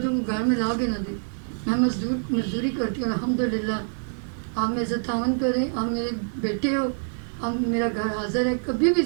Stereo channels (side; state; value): left; silent; digital silence